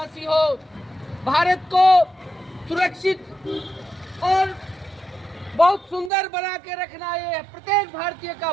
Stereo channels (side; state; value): left; drops out; at 6.1 s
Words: हो, भारत को सुरक्षित और बहुत सुंदर बना के रखना ये प्रत्येक भारतीय का